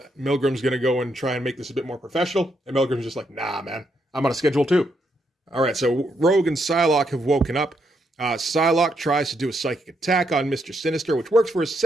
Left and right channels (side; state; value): both; normal; correlation 0.78